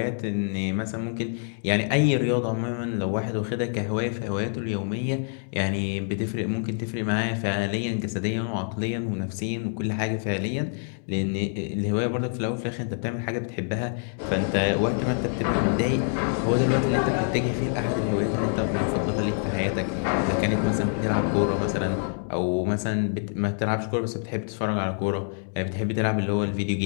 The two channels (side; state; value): right; silent; 61 dB below the other